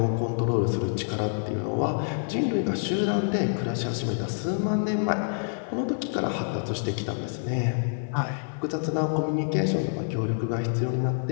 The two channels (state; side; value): silent; right; digital silence